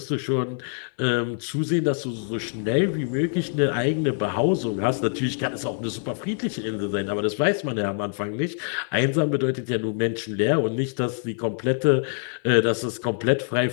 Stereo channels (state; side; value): silent; right; digital silence